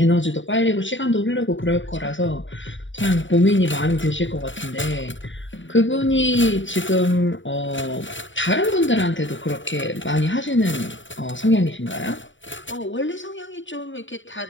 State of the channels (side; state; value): right; late; 0.55 ms